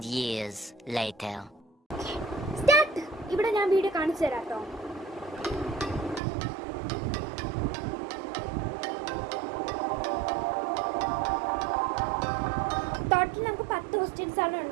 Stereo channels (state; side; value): drops out; left; at 6.2 s